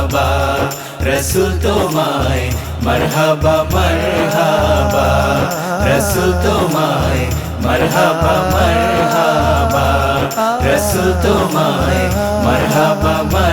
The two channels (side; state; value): both; identical; correlation 1.00